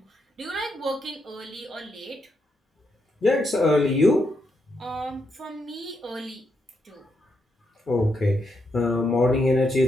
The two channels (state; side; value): normal; both; correlation 0.81